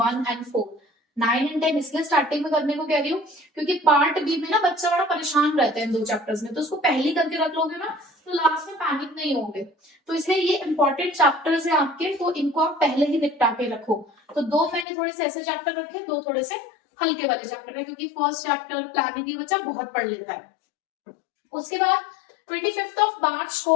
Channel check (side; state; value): right; drops out; at 14.9 s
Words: and 4। 9 एंड 10 इसलिए स्टार्टिंग में करने को कह रही हूँ क्योंकि पार्ट बी में ना बच्चा बड़ा परेशान रहता है इन 2 चैप्टर्स में, तो उसको पहली करके रख लोगे ना तो लास्ट में पैनिक नहीं होगे। तो इसलिए ये इंपॉर्टेंट चैप्टर्स है आपके, तो इनको आप पहले ही निपटा के रखो। तो 2 मैंने थोड़े से ऐसे चैप्टर रखे, 2 थोड़े से हल्के वाले चैप्टर है, क्योंकि फर्स्ट चैप्टर प्लानिंग ही बच्चा बहुत पढ़ लेता है। उसके बाद 25 मार्च